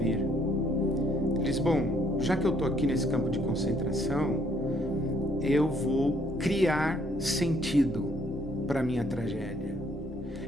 Ele diz: bom, já que eu estou aqui nesse campo de concentração, eu vou criar sentido para a minha tragédia.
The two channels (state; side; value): normal; both; correlation 0.66